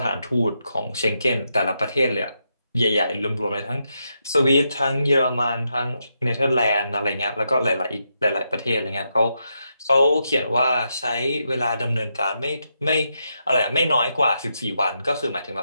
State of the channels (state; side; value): inverted; both; correlation -0.83